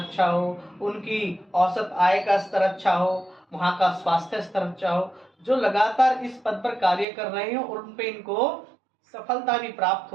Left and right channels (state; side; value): drops out; left; at 7.1 s